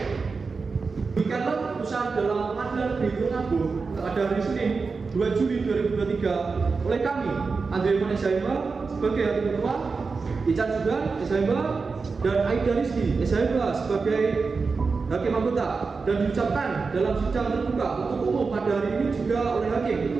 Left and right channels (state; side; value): quieter; left; 4.6 dB